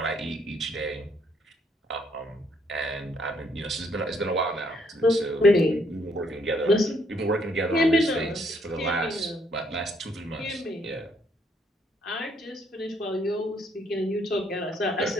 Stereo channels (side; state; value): both; normal; correlation 0.69